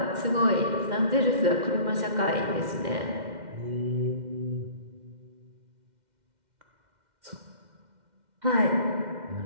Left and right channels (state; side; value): late; left; 2.1 ms